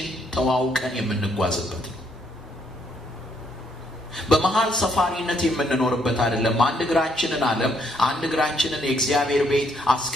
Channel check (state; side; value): normal; both; correlation 0.71